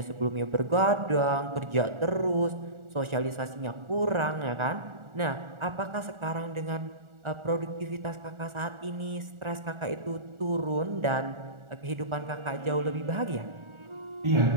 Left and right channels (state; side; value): late; left; 1.4 ms